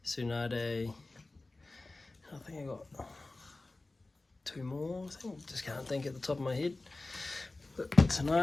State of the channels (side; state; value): right; quieter; 3.1 dB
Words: Tsunade. I think I got two more. Just can't think at the top of my head. But